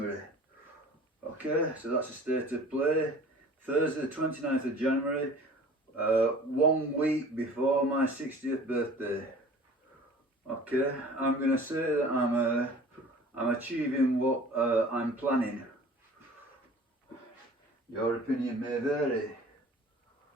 Okay, so that's the state of play. Thursday, the 29th of January. 1 week before my 60th birthday. Okay, I'm going to say that I'm achieving what I'm planning. Your opinion may vary.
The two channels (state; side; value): normal; both; correlation 0.45